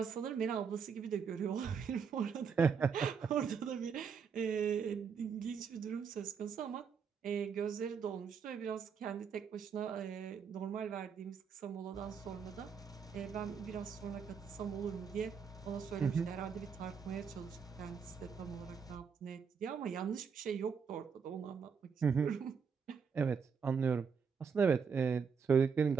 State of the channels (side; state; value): left; quieter; 6.3 dB